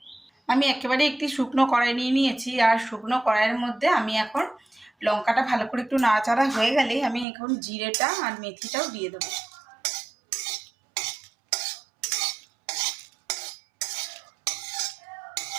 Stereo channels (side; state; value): left; drops out; at 7.2 s